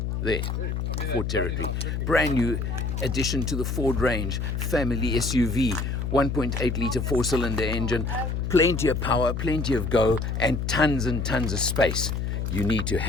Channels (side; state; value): left; noise; hum, 2 dB below the sound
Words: There, Ford Territory. Brand new addition to the Ford range. Family SUV, 1.8 litre 4-cylinder engine. Plenty of power, plenty of go, and tons of space. You need to